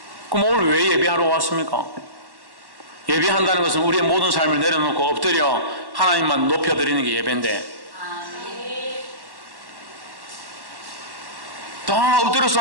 그럼 오늘 왜 예배하러 왔습니까? 예배한다는 것은 우리의 모든 삶을 내려놓고 엎드려 하나님만 높여드리는 게 예배인데, 다 엎드려서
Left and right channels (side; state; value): left; late; 1.1 ms